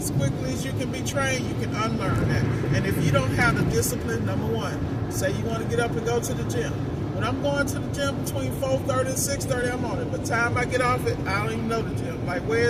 quickly as you can be trained, you can unlearn that. And if you don't have the discipline, number one, say you want to get up and go to the gym. When I'm going to the gym between 4:30 and 6:30, I'm on it. By the time I get off it, I don't even know the gym. Like,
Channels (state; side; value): identical; both; correlation 1.00